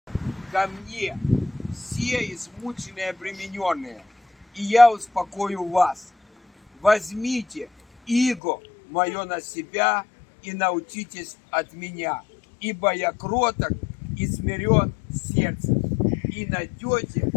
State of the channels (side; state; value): right; drops out; at 8.4 s